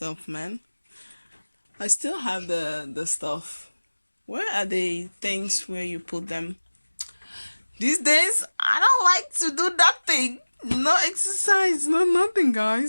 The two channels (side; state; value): both; inverted; correlation -1.00